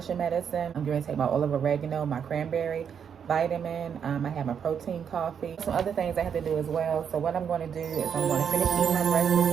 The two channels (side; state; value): left; quieter; 7.6 dB